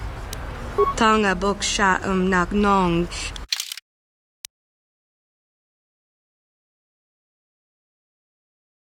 Tanga boksha nagnong.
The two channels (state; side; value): identical; both; correlation 1.00